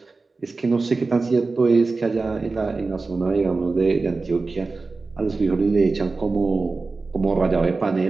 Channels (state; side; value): quieter; left; 3.8 dB